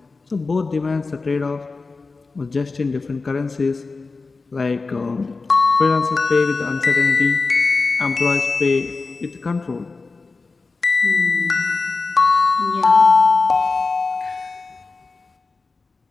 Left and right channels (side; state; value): right; quieter; 4.0 dB